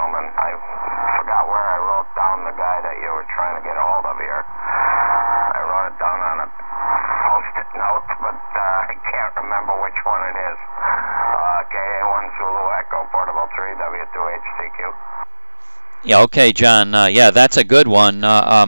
I forgot where I wrote down the guy that you were trying to get a hold of here. Yeah, okay, John. Yeah, that's a good one.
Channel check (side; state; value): both; inverted; correlation -1.00